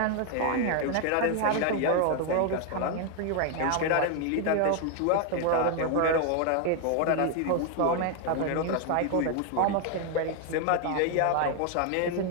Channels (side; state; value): both; different; correlation 0.00